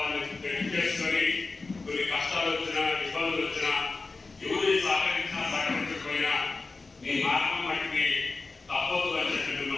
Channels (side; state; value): right; quieter; 3.9 dB